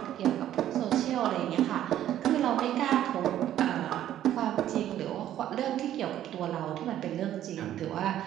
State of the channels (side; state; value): left; quieter; 11.9 dB